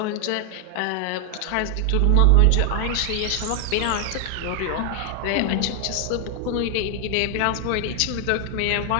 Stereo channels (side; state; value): both; different; correlation 0.00